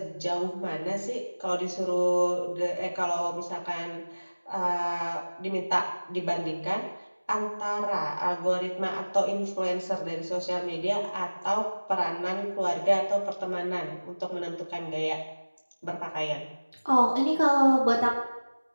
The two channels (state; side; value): inverted; both; correlation -1.00